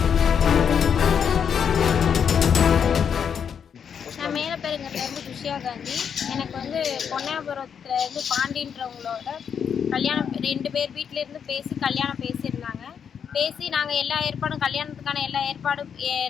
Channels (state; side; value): quieter; right; 7.5 dB